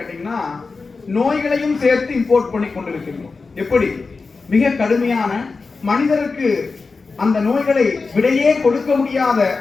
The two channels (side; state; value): right; quieter; 4.2 dB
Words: நோய்களையும் சேர்த்து இம்போர்ட் பண்ணி கொண்டிருக்கிறோம். எப்படி? மிக கடுமையான மனிதருக்கு அந்த நோய்களை விடையே கொடுக்க முடியாத